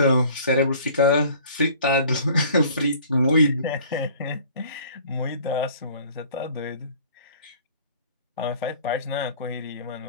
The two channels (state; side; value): inverted; both; correlation -0.50